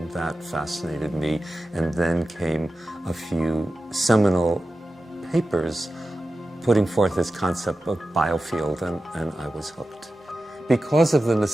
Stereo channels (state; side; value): normal; both; correlation 0.93